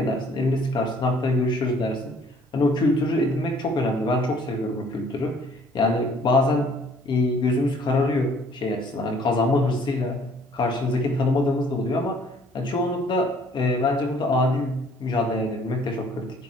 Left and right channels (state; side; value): normal; both; correlation 0.58